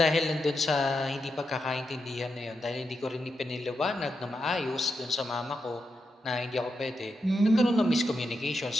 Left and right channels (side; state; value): both; normal; correlation 0.85